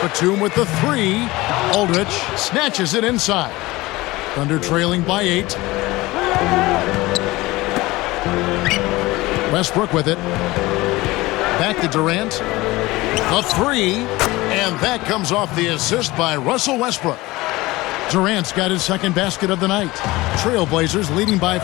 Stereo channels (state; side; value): quieter; right; 20.1 dB